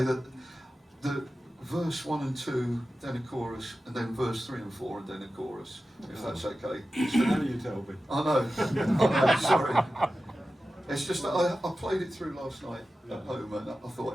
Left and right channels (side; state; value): both; normal; correlation 0.94